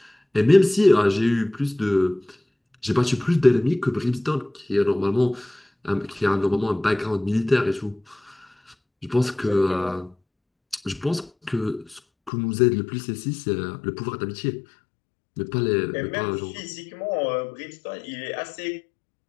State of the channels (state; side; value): drops out; right; at 12.3 s